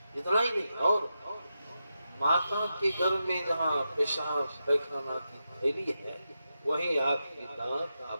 इतना ही नहीं, और माता के गर्भ में जहाँ पेशाब पैखाना की थैली है, वहीं आपकी दांत,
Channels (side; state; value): both; inverted; correlation -0.88